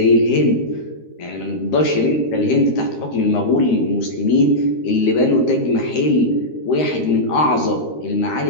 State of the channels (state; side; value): late; right; 13 ms